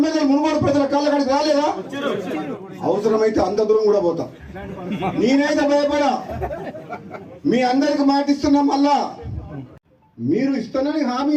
మునుగోడు ప్రజల కాళ్ళ కాడికి రాలేదా? అవసరమైతే అంత దూరం కూడా పోతా. నేనైతే భయపడా. మీ అందరికి మాటిస్తున్నా. మళ్ళా మీరు ఇస్తానని హామీ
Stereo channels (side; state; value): both; identical; correlation 1.00